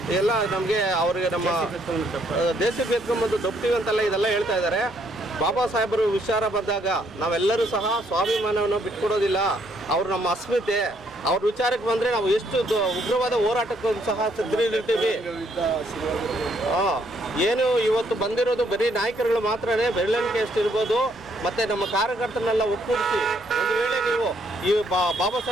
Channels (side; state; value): both; normal; correlation 0.70